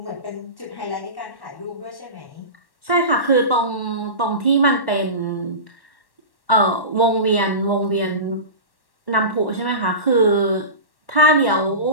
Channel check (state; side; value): late; right; 1.1 ms